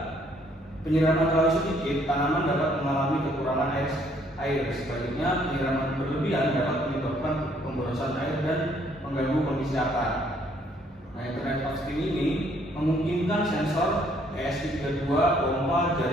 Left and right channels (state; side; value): normal; both; correlation 0.65